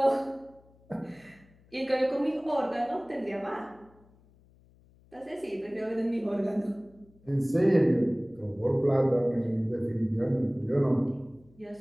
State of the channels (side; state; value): left; noise; hum, 29 dB below the sound